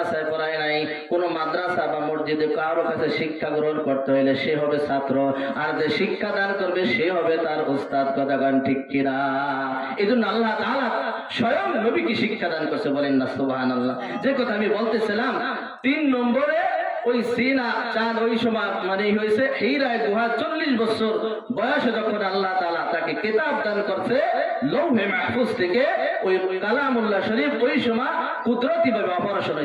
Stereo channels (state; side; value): identical; both; correlation 1.00